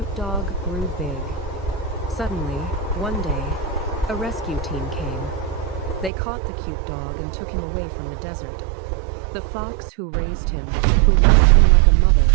dog grew big. Suddenly, one day, a rescue team came. They caught the cute dog and took him away from the desert. The fox who raised him, who loved him like a mother,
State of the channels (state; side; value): drops out; left; at 6.1 s